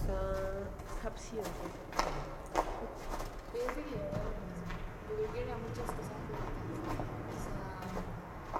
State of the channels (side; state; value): both; identical; correlation 1.00